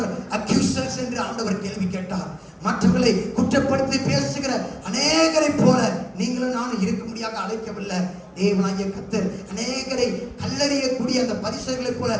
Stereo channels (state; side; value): identical; both; correlation 1.00